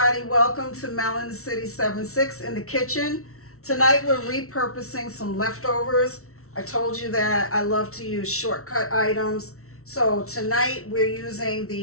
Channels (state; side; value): late; right; 0.63 ms